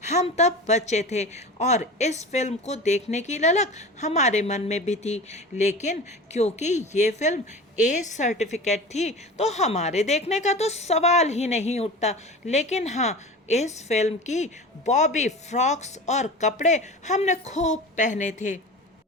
हम तब बच्चे थे और इस फिल्म को देखने की ललक हमारे मन में भी थी, लेकिन क्योंकि ये फिल्म ए सर्टिफिकेट थी तो हमारे देखने का तो सवाल ही नहीं उठता। लेकिन हाँ, इस फिल्म की बॉबी फ्रॉक्स और कपड़े हमने खूब पहने थे।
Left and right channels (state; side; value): normal; both; correlation 0.34